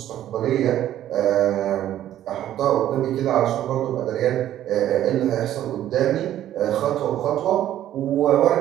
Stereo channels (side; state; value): left; quieter; 12.2 dB